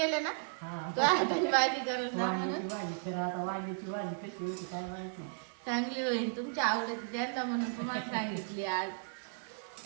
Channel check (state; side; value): silent; left; 54 dB below the other